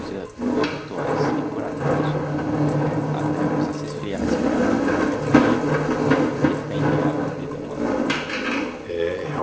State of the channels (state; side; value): identical; both; correlation 1.00